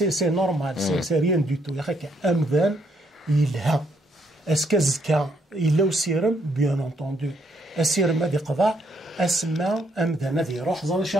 نورمال سي ريان دو تو يا اخي امذان يلها اسكازكا إلا وسيرم بيان انتوندو السيرم هذه قضاء اسماء امذان هذه روح زال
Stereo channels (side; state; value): both; normal; correlation 0.72